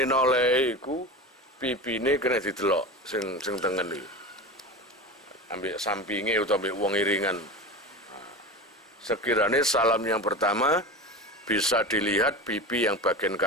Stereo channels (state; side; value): normal; both; correlation 0.28